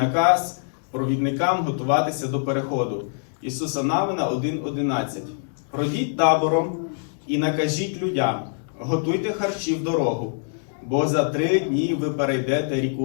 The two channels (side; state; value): right; silent; digital silence